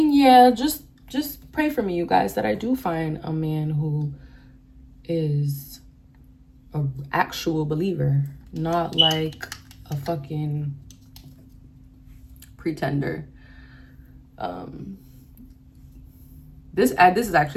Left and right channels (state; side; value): identical; both; correlation 1.00